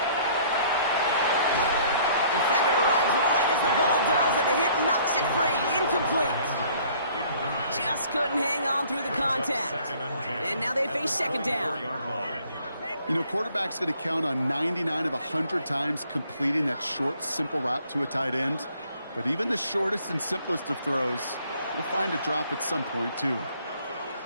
Defender arrives right as the ball does, and the hit knocks it free. Incomplete. Just couldn't hang on through the contact. And now they face 2nd down. You know, quarterback's going to count on 99 of 100 times completing that short, simple route to a tight end. But even the shortest and simplest of throws will find a drop at some point, too.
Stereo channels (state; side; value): inverted; both; correlation -0.58